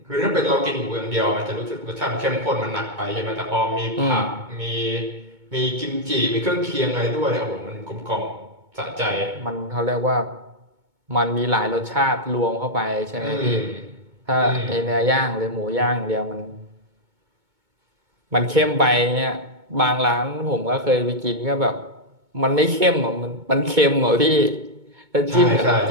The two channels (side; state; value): left; late; 2.2 ms